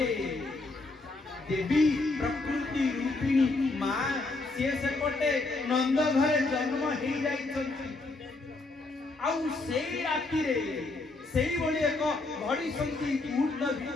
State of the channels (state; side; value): quieter; right; 3.3 dB